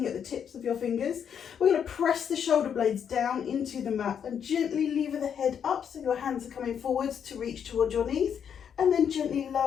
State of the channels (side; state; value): right; quieter; 8.0 dB